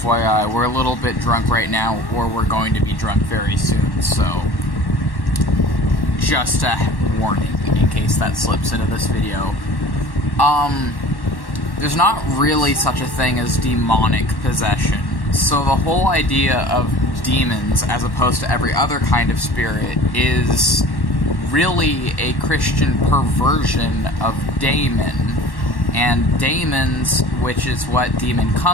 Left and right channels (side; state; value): right; late; 1.1 ms